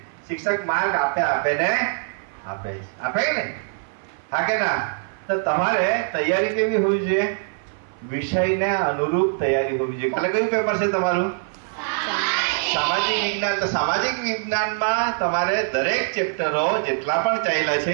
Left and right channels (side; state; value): left; silent; 59 dB below the other